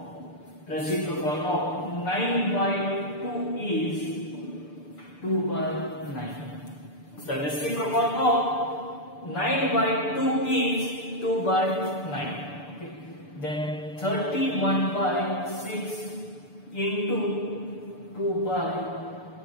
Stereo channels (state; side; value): late; right; 6.8 ms